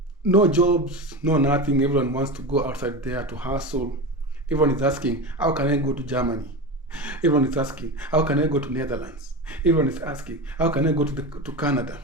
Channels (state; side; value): normal; both; correlation 0.24